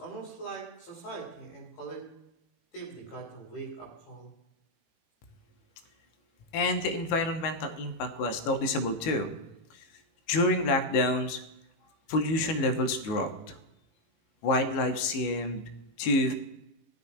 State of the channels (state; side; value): late; right; 19 ms